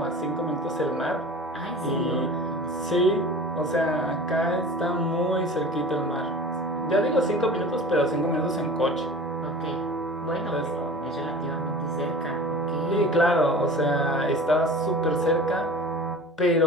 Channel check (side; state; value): both; normal; correlation 0.39